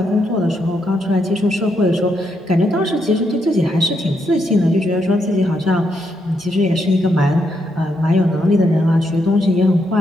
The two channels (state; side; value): normal; both; correlation 0.79